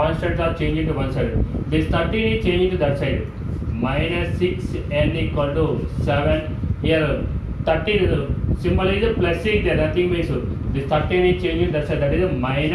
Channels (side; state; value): both; identical; correlation 1.00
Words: are changing to one side. This 13 is changing to that side. Minus 6 n equal to 7. Here 13 symbol is plus 6 there, nothing means this 13 is changing that side, that is